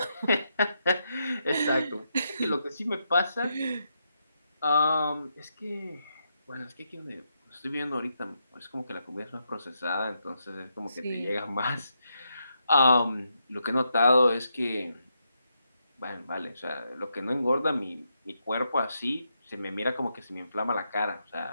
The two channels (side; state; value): both; inverted; correlation -0.82